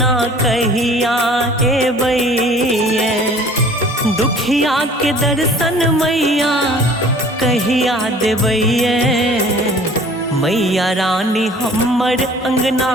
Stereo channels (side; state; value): both; normal; correlation 0.50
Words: कहिया एबैये। दुखिया के दर्शन मैया कहिया देबैये। मैया रानी हमर अंगना